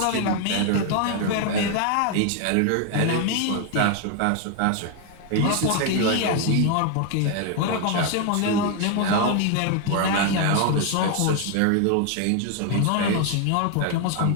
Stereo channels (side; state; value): both; different; correlation 0.01